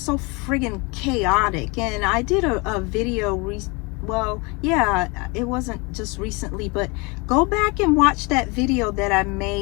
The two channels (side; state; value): right; quieter; 28.4 dB